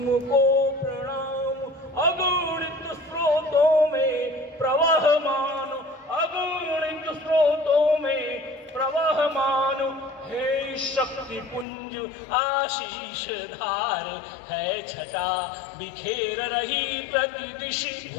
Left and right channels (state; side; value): drops out; right; at 11.7 s